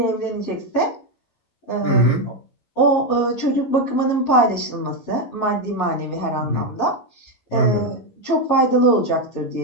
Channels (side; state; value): right; late; 11 ms